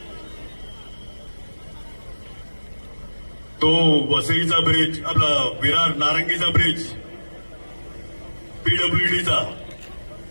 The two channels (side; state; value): both; inverted; correlation -1.00